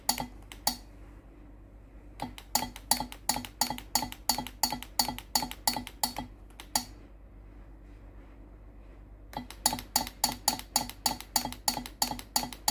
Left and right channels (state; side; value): identical; both; correlation 1.00